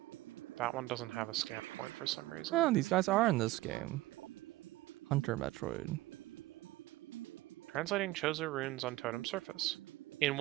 That one doesn't have a scan point for some reason. Oh, these guys are in this game. Hunter Metroid. Translating Chozo runes on totem surface. In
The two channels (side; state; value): left; quieter; 18.3 dB